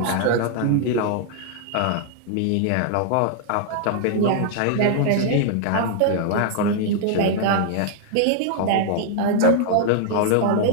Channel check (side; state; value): both; different; correlation 0.00